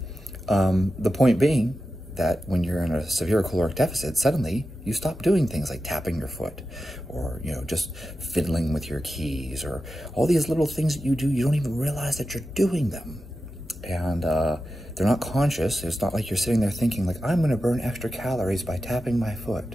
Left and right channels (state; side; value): normal; both; correlation 0.92